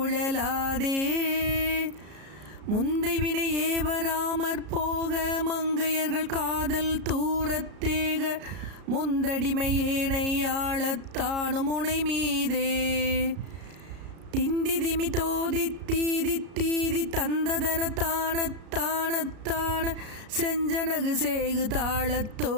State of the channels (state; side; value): late; left; 33 ms